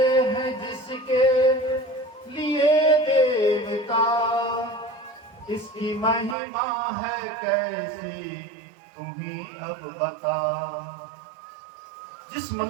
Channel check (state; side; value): drops out; left; at 6.4 s